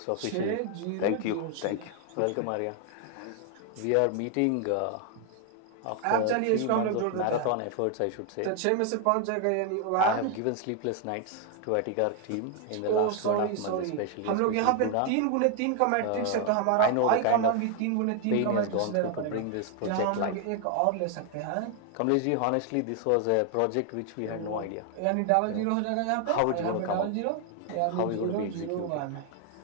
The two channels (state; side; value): different; both; correlation 0.01